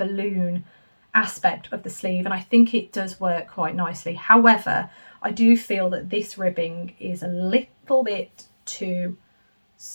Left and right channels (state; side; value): inverted; both; correlation -1.00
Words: aspect of the sleeve, and I think it does work quite nicely. However, I do feel that this ribbing is a little bit too